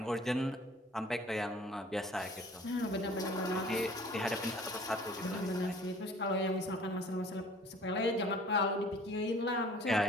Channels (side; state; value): both; normal; correlation 0.51